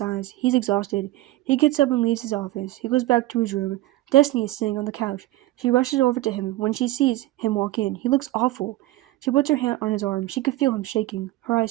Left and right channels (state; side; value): quieter; left; 17.0 dB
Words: He's exhausted. He gets up and leaves his office. He goes back to his room. Destiny is sitting on the couch. She rushes over to him. When she sees him walk in, he looks awful. She puts her hand on his arm. She could feel him shaking. Her